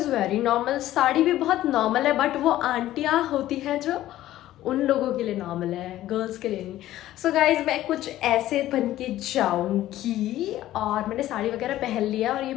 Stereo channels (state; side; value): quieter; right; 14.2 dB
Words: very normal, sari भी बहुत नॉर्मल है, बट वो आंटियाँ होती हैं जो उन लोगों के लिए नॉर्मल है, गर्ल्स के लिए नहीं। सो गाइज मैं कुछ ऐसे बन के जाऊँगी और मैंने साड़ी वगैरह पहन लिया और ये